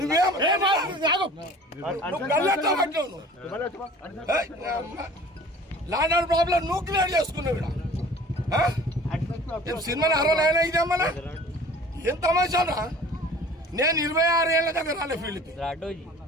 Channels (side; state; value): both; normal; correlation 0.46